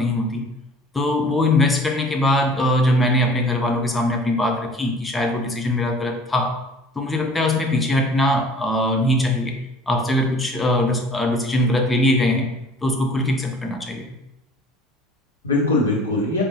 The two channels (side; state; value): both; normal; correlation 0.48